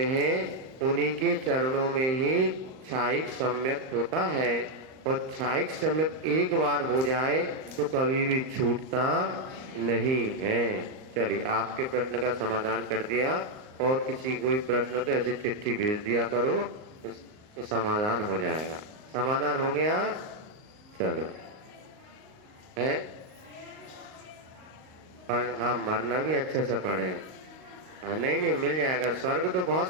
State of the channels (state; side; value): late; left; 38 ms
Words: हैं उन्हीं के चरणों में ही छायिक सम्यक होता है, और छायिक सम्यक एक बार हो जाए तो कभी भी छूटता नहीं है। चलिए आपके प्रश्न का समाधान कर दिया, और किसी कोई प्रश्न तो ऐसी चिट्ठी भेज दिया करो तो समाधान हो जाएगा। समाधान हो गया, चलो है। हाँ मरना भी अच्छे से पढ़े। नहीं मिल जाएगा। स्वर्ग तो